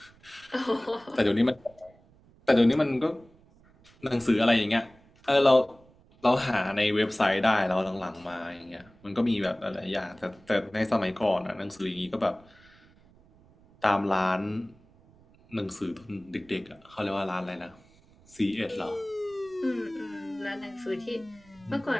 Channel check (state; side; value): noise; right; rumble, 28 dB below the sound